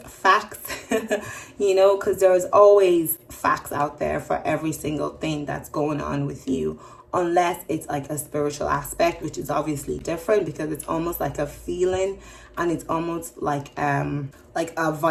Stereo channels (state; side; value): identical; both; correlation 1.00